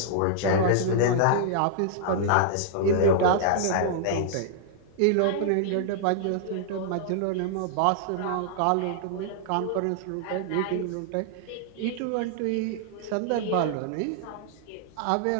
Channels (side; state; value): both; different; correlation -0.01